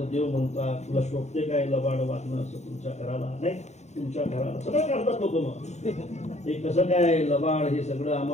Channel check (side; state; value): right; late; 0.33 ms